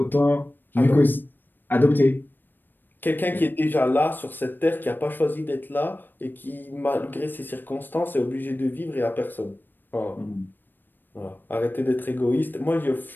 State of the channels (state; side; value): late; right; 0.093 ms